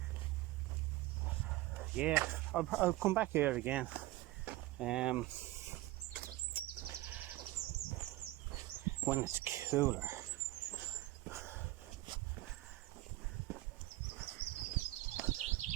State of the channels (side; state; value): left; quieter; 17.8 dB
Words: Yeah, I'll come back here again. When it's cooler.